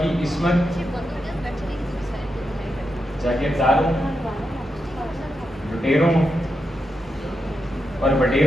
عصمت جاگیرداروں، لٹیروں اور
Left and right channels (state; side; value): normal; both; correlation 0.86